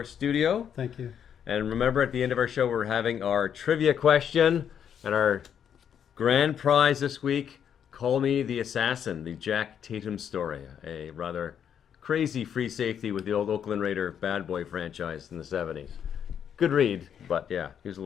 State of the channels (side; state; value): right; quieter; 8.5 dB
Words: studio. Thank you. And remember, at the end of our show, we're having our trivia question. And our grand prize this week, Call Me the Assassin, the Jack Tatum story. A rather crazy free safety with the old Oakland Raider bad boy franchise in the 70s. Good read, but yeah, he was a